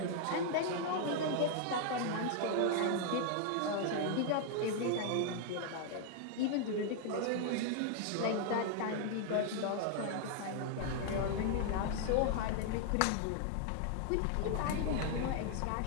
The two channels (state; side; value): different; both; correlation 0.00